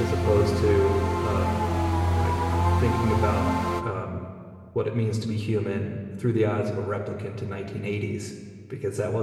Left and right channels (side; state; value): both; identical; correlation 1.00